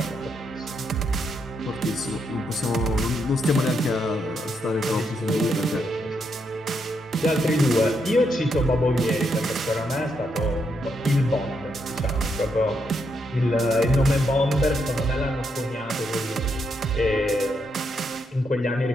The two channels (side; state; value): both; normal; correlation 0.79